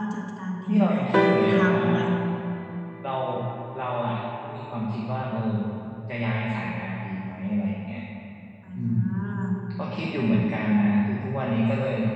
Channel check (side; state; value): both; identical; correlation 1.00